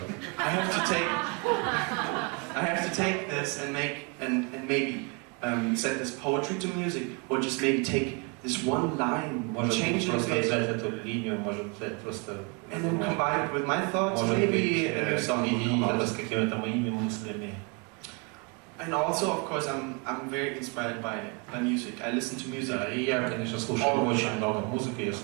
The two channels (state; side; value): quieter; left; 32.3 dB